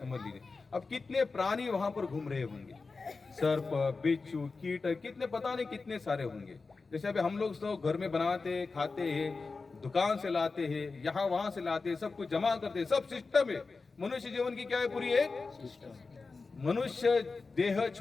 लीजिए। अब कितने प्राणी वहां पर घूम रहे होंगे, सर्प, बिच्छू, कीट, कितने पता नहीं कितने सारे होंगे। जैसे अभी हम लोग सब घर में बनाते खाते हैं, दुकान से लाते हैं, यहाँ वहां से लाते हैं, सब कुछ जमा करते हैं, सब सिस्टम है। मनुष्य जीवन की क्या है? पूरी एक मनुष्य देह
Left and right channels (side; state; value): right; quieter; 4.2 dB